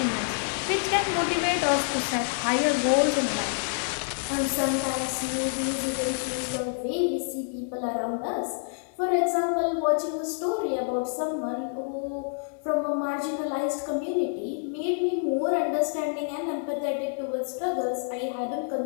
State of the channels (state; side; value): silent; right; digital silence